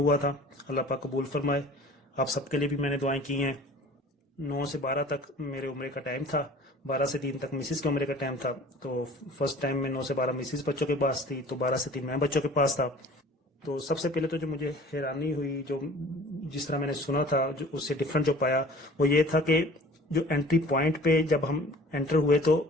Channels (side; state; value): both; normal; correlation 0.47